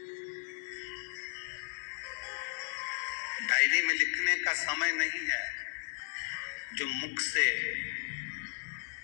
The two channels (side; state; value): right; silent; digital silence